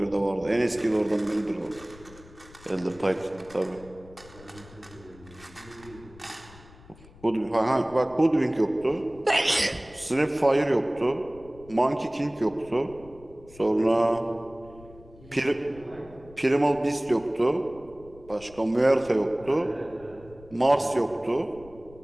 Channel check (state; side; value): noise; left; rumble, 22 dB below the sound